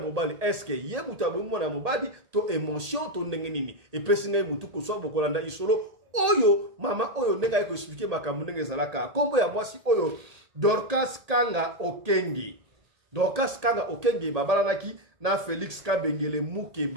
est-ce que ye mutu abomi mwana mobali to émotion to ndenge nini epesi ngai mutu ko so bokolanda isolo oyo mama oyo ndenga yeko expliquer makambo ndenge zalaka kombo ya mwasi oyo Dorcas Kanga Okenge babalanaki na Félix Kabengele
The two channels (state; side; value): late; left; 1.8 ms